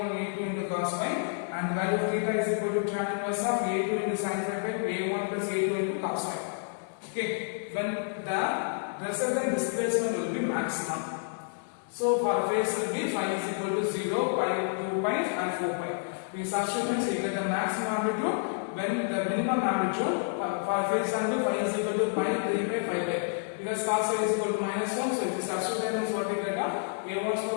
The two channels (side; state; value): right; silent; digital silence